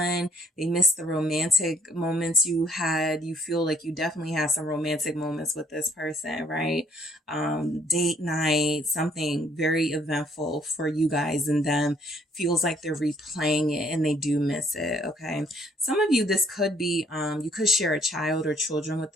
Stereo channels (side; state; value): both; normal; correlation 0.65